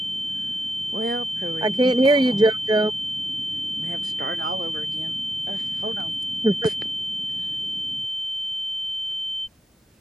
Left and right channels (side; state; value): both; normal; correlation 0.83